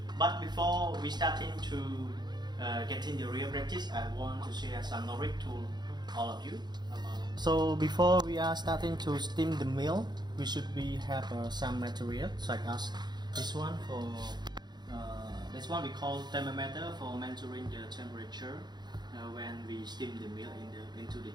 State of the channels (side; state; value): left; late; 0.21 ms